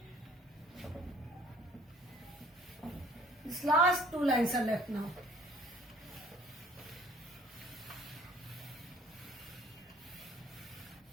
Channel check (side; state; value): both; normal; correlation 0.55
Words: This last two lines are left now.